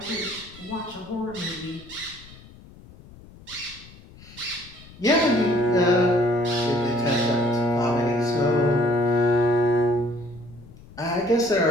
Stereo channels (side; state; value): left; noise; rumble, 21 dB below the sound